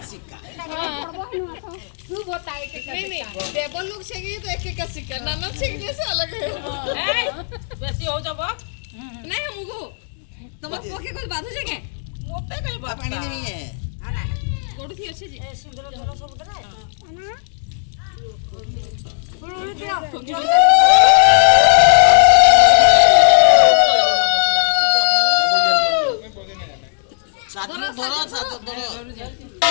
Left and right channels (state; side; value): silent; right; digital silence